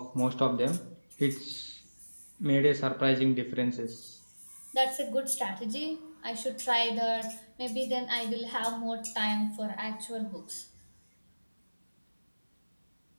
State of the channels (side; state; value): both; inverted; correlation -1.00